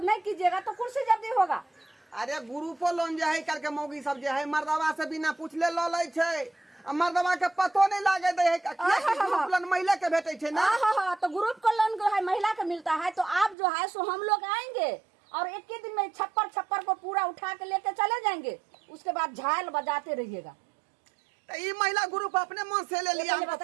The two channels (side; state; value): left; drops out; at 13.6 s